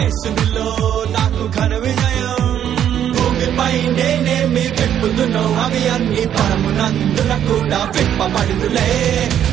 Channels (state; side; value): quieter; left; 10.0 dB